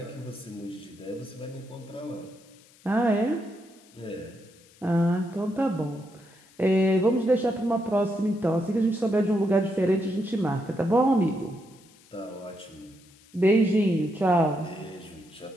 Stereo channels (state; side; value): noise; left; hiss, 27 dB below the sound